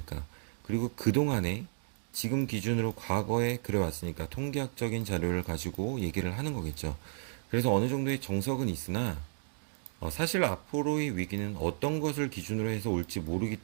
그리고 그동안에 지금 기준으로 과거에 그래왔으니까 통계학적인 자료를 가지고 얘기를 하는 거겠죠. 그래서 어느 정도의 정석은 있으나 사실 앞으로의 위기는 어떤 것을 기준으로 해서 올지 모르기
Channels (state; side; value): silent; left; digital silence